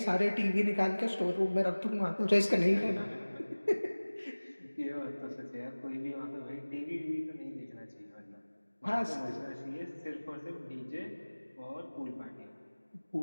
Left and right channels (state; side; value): inverted; both; correlation -1.00